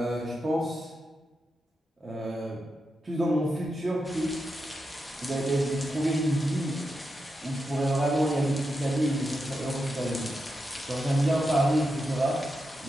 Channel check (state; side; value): normal; both; correlation 0.87